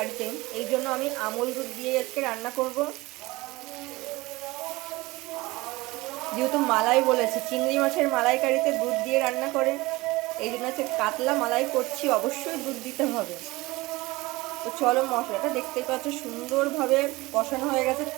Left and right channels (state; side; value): quieter; left; 21.1 dB